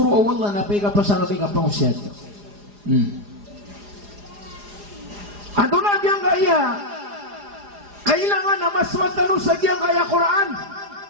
awala na pega pasanga pega pangsiat. Ato na diyang kaya kailangan na maswatano sa diyang kaya Quran.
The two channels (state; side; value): late; left; 4.9 ms